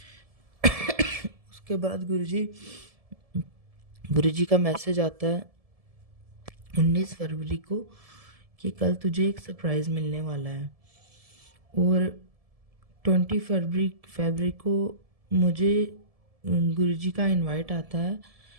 उसके बाद गुरुजी का मैसेज आता है 19 फरवरी को कि कल तुझे एक सरप्राइज़ मिलने वाला है। और 20 फरवरी को मुझे गुरुजी का इनवाइट आता है,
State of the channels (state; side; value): late; left; 1.7 ms